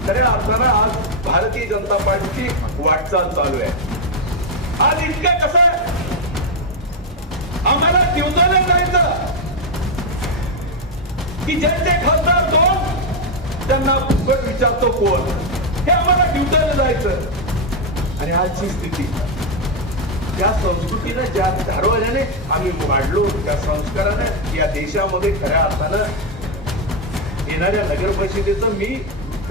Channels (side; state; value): both; normal; correlation 0.02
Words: खऱ्या अर्थानं आज भारतीय जनता पार्टीची वाटचाल चालू आहे. आज इतकं कसं आम्हाला दिवसाला जायचं की ज्यांचे खासदार दोन त्यांना फुकट विचारतो कोण, हे आम्हाला दिवसाला जायचं. आणि आजची स्थिती त्या संस्कृतीने ज्या धारवाल्याने आम्ही वाढलो, त्या संस्काराने या देशामध्ये खऱ्या अर्थानं येणाऱ्या नगर परिषदेचं मी